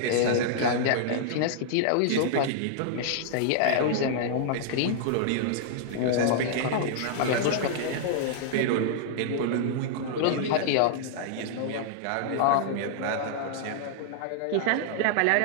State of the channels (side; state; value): both; different; correlation -0.01